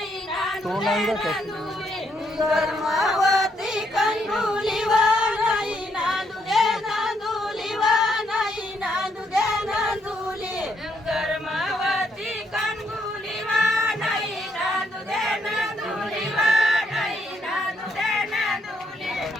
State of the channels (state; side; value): normal; both; correlation 0.74